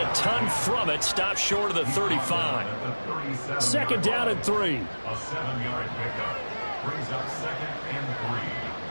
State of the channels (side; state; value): both; inverted; correlation -1.00